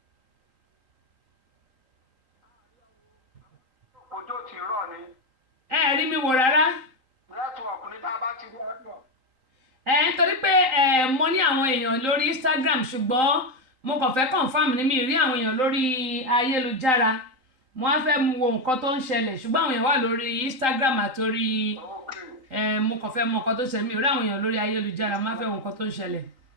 ojú ò tí ì rọ̀ ni. ẹ rí mi wò rárá. network ní tá a bá ti rí ọ̀dọ̀. Nítorí pé mo ní àwọn èèyàn lórí Instagram ṣùgbọ́n mo kàn fẹ́ confirm ní mi rí àwọn èèyàn lórí ayélujára mo á fẹ́ wo nǹkan tó ń ṣẹlẹ̀ ṣùgbọ́n àwọn èèyàn wà lórí Instagram àtòrí mo kàn fẹ́ mọ nǹkan tó ṣẹlẹ̀ mi rí àwọn èèyàn lórí ayélujára mo á fẹ́ wo nǹkan tó ń ṣẹlẹ̀.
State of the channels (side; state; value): left; late; 3.8 ms